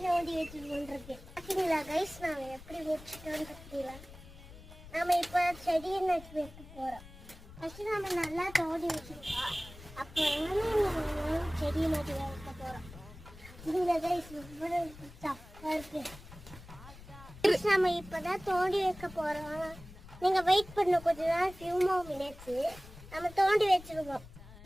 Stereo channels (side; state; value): left; noise; rumble, 17 dB below the sound